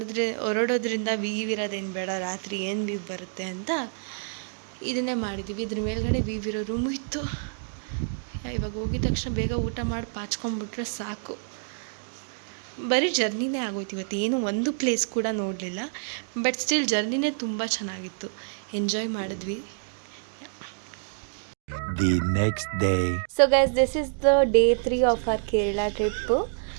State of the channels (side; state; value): left; silent; digital silence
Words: ಹೊರಡೋದ್ರಿಂದ ವೀವ್ ಇರೋದೇನು ಬೇಡ, ರಾತ್ರಿ ಏನು ವೀವ್ ಬರುತ್ತೆ ಅಂತ ಇದನ್ನೇ ಮಾಡಿದ್ದೀವಿ. ಇದ್ರ ಮೇಲ್ಗಡೆ ವೀವ್ ಇರೋ ರೂಮು ಇತ್ತು. ಇವಾಗ ಹೋಗಿದ ತಕ್ಷಣ ಬೇಗ ಊಟ ಮಾಡಿ ಪಾಚ್ಕೊಂಡ್ಬಿಟ್ರೆ ಸಾಕು. ಬರೀ ಜರ್ನಿನೇ ಆಗೋಯ್ತು ಇವತ್ತು, ಏನು ಒಂದು ಪ್ಲೇಸ್ ಕೂಡ ನೋಡಲಿಲ್ಲ. ಬಟ್ ಸ್ಟಿಲ್ ಜರ್ನಿನೇ ತುಂಬ ಚೆನ್ನಾಗಿತ್ತು, ಎಂಜಾಯ್ ಮಾಡಿದ್ವಿ. The next day. So guys, this is the day 3 of our Kerala trip.